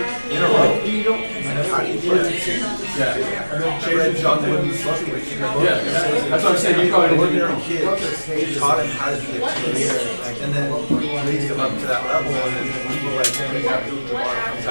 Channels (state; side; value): inverted; both; correlation -1.00